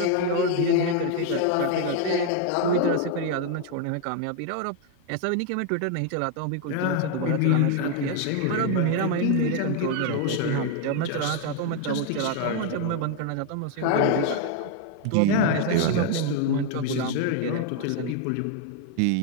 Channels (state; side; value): different; both; correlation 0.01